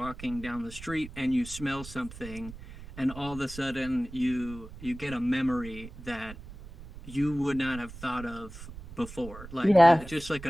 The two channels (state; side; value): noise; right; rumble, 14 dB below the sound